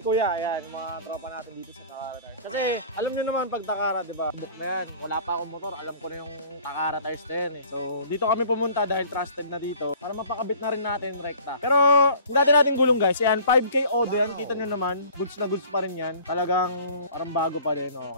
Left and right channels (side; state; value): both; inverted; correlation -0.47